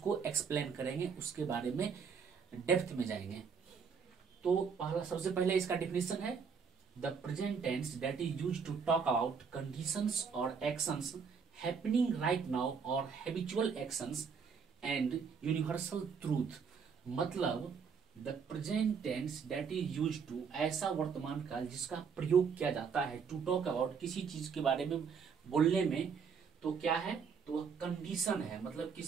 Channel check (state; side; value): quieter; left; 6.1 dB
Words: एक्सप्लेन करेंगे, उसके बारे में डेप्थ में जाएंगे। तो पहला, सबसे पहले इसका डिफिनेशन है the present tense that is used to talk about conditions और एक्शंस हैपनिंग राइट नाउ और habitual actions and universal truth, मतलब the present tense that is used to, ऐसा वर्तमान काल जिसका प्रयोग किया जाता है टू टॉक अबाउट, किसी चीज के बारे में बोलने में। तो क्या है? तो वह कंडीशन है, मतलब